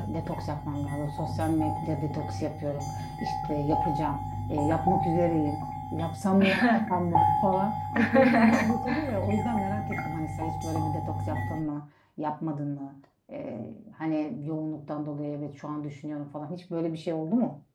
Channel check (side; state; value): both; identical; correlation 1.00